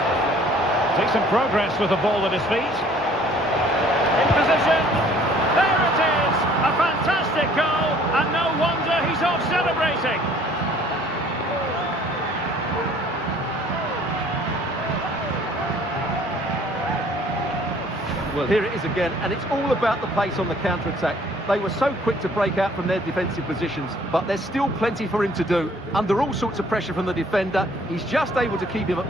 Decent progress with the ball at his feet. In position. There it is! A fantastic goal, and no wonder he's off celebrating. Well, here it is again, and it's all about the pace on the counter-attack. They were so quick to break out from their defensive positions, but there's still plenty for him to do. Under all sorts of pressure from the defender, he's just able to keep him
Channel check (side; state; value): both; normal; correlation 0.56